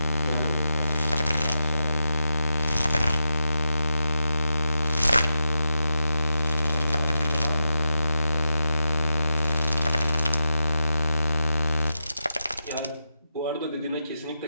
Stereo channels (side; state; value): both; inverted; correlation -0.86